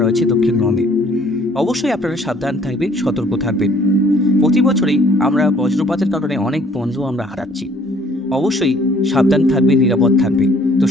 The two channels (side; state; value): both; normal; correlation 0.59